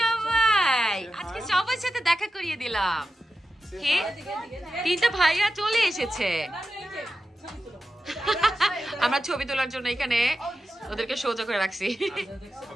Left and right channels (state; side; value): normal; both; correlation 0.91